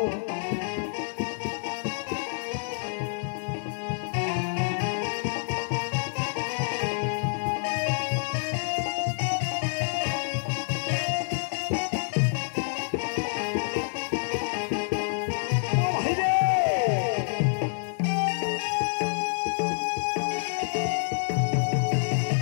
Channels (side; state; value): right; silent; 57 dB below the other